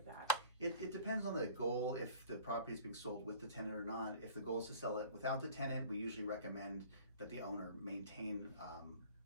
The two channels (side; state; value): both; inverted; correlation -0.47